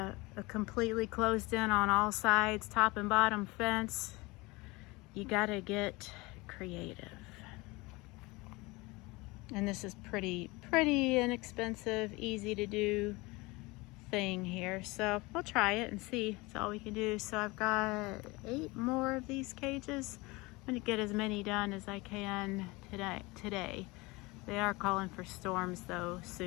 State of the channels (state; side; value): quieter; right; 23.7 dB